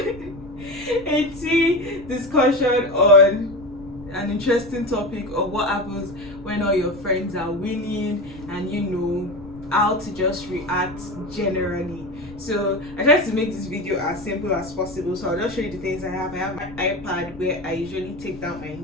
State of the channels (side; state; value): left; noise; rumble, 18 dB below the sound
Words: a tea discussion on an interesting topic of what happens when all your friends are winning and you know how to just react generally. So I tried to make this video as simple as possible, so I'll just show you the things I have. I have my iPad where I usually take down my